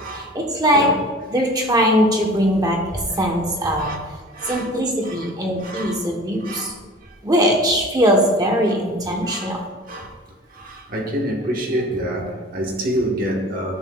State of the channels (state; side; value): normal; both; correlation 0.42